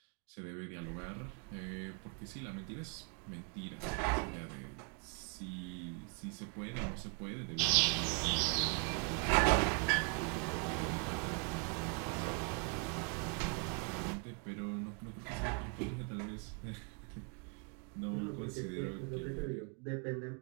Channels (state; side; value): quieter; left; 33.7 dB